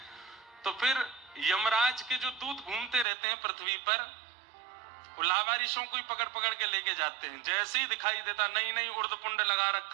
तो फिर यमराज के जो दूत घूमते रहते हैं पृथ्वी पर, वो लावारिशों को ही पकड़ पकड़ के लेके जाते हैं। जैसे ही दिखाई देता, नहीं नहीं उर्दपुंड लगा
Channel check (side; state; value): left; drops out; at 3.1 s